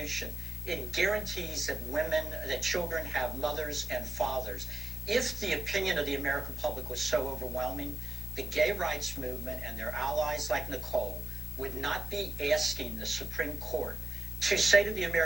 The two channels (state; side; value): normal; both; correlation 0.90